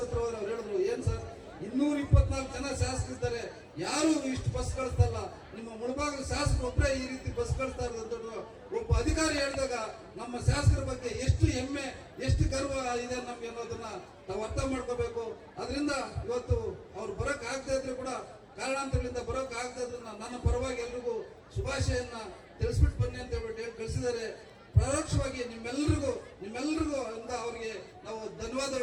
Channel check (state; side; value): identical; both; correlation 1.00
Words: ಹತ್ರ ಅವ್ರು ಹೇಳಿದ್ರು, ಏನ್ ಸರ್ 224 ಜನ ಶಾಸಕರಿದ್ದಾರೆ, ಯಾರು ಇಷ್ಟು ಬಸ್ ಕಳಿಸ್ತಲ್ಲ, ನಿಮ್ಮ ಮುಳಬಾಗಿಲು ಶಾಸಕರು ಒಬ್ಬರೇ ಈ ರೀತಿ ಬಸ್ ಕಳಿಸ್ತಾ ಇರೋದು ಒಬ್ಬ ಅಧಿಕಾರಿ ಹೇಳಿದಾಗ ನಮ್ಮ ಶಾಸಕರ ಬಗ್ಗೆ ಎಷ್ಟು ಹೆಮ್ಮೆ, ಎಷ್ಟು ಗರ್ವ ಇದೆ ನಮ್ಗೆ ಅನ್ನೋದನ್ನ ನಾವು ಅರ್ಥ ಮಾಡ್ಕೋಬೇಕು. ಅದರಿಂದ ಇವತ್ತು ಅವ್ರು ಬರಕ್ ಆಗದೆ ಇದ್ರು ಕೂಡ ಕಾರಣಾಂತರಗಳಿಂದ ಬರೋಕ್ ಆಗದೆ ಇದ್ರು ನನ್ನ ಪರವಾಗಿ ಎಲ್ರಿಗೂ ಶುಭಾಶಯನ್ನ ತಿಳಿಸ್ಬಿಟ್ಟು ಬನ್ನಿ ಅಂತ ಹೇಳ್ಬಿಟ್ಟು ಹೇಳಿ ಕಳಿಸಿದ್ದಾರೆ. ಪರೋಕ್ಷವಾಗಿ ನಿಮ್ಮೆಲ್ಲರಿಗೂ ಅಂತ ಅವರಿಗೆ ನಾವು